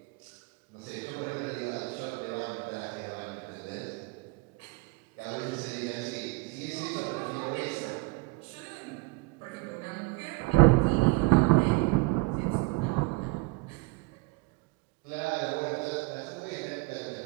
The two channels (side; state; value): left; quieter; 24.7 dB